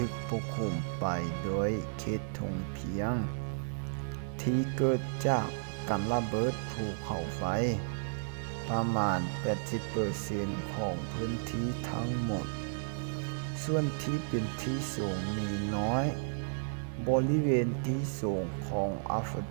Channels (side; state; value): left; silent; digital silence